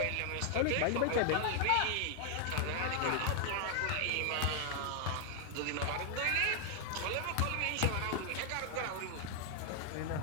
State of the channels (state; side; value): different; both; correlation 0.00